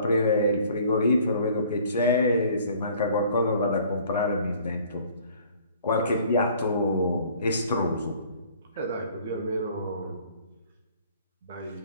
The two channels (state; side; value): inverted; both; correlation -0.54